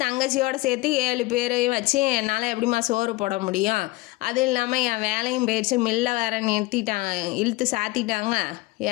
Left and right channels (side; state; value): right; quieter; 21.0 dB